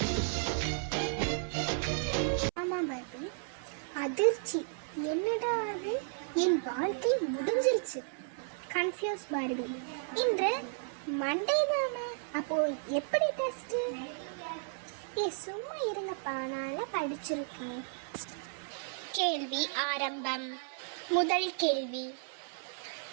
ஆமா பார்பி. அதிர்ச்சி. என்னடா அது? என் வாழ்க்கை முடிஞ்சிருச்சு. Confuse Barbie. இன்று மண்டே தானே, அப்போ எப்படி டெஸ்ட்? சும்மா இருங்கப்பா, நான் படிச்சிருக்கேன். கேள்வி ஆரம்பம். முதல் கேள்வி,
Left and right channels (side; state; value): left; silent; 55 dB below the other